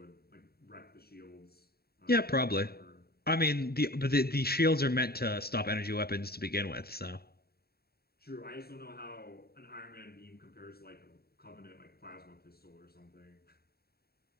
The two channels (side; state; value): right; late; 0.45 ms